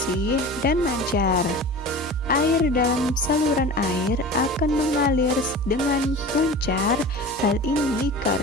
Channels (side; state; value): both; normal; correlation 0.36